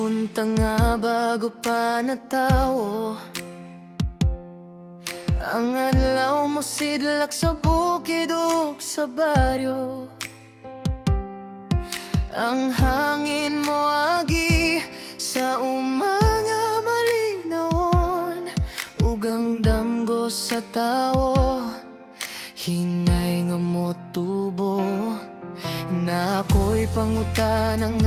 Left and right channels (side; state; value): both; identical; correlation 1.00